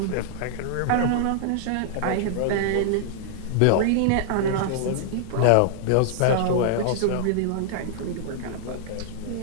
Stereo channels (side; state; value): both; different; correlation -0.01